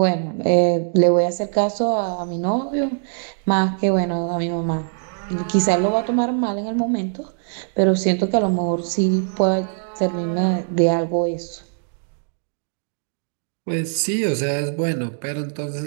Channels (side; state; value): left; silent; digital silence